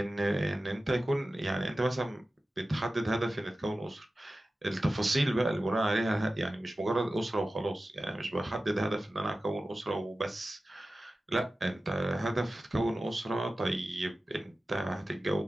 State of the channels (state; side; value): normal; both; correlation 0.95